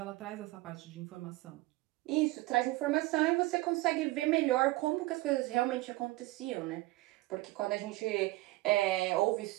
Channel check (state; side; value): quieter; left; 19.7 dB